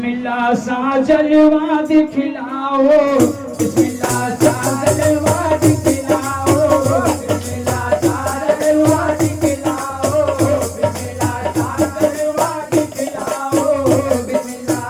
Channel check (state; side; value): identical; both; correlation 1.00